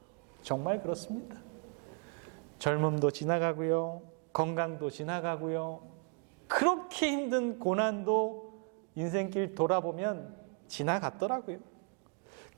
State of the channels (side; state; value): left; quieter; 38.0 dB